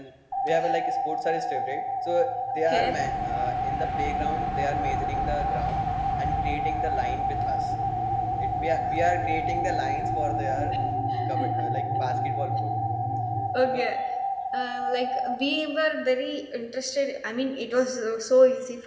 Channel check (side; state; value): both; identical; correlation 1.00